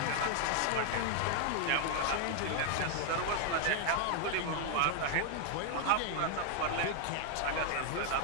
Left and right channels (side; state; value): both; different; correlation 0.00